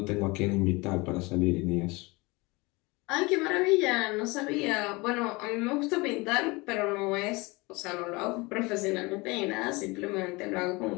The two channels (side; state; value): right; quieter; 24.7 dB